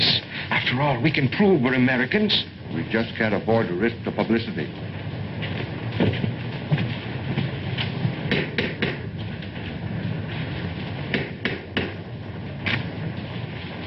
After all, we can prove we're Americans. We just can't afford to risk the publicity.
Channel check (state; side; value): identical; both; correlation 1.00